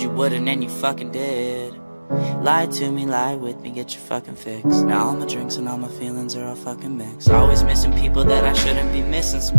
you wouldn't and you fucking did. Lie to me, lie with me, get your fucking fix. Now all my drinks and all my feelings are all fucking mixed. Always missing people that I shouldn't be missing.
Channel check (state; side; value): inverted; both; correlation -1.00